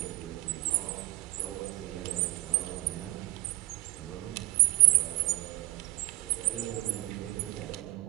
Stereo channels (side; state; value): left; quieter; 19.9 dB